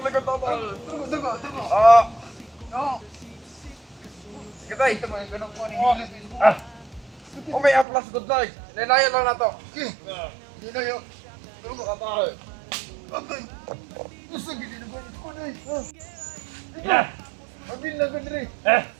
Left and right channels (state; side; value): drops out; left; at 7.9 s